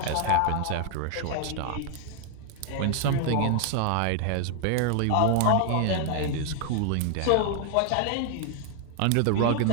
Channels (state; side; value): different; both; correlation 0.00